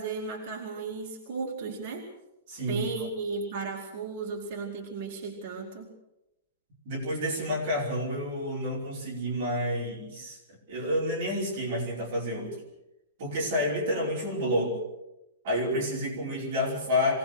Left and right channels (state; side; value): inverted; both; correlation -0.37